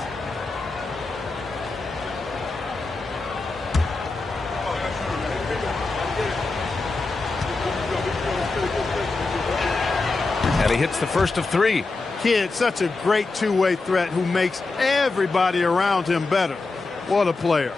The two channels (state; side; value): quieter; right; 3.6 dB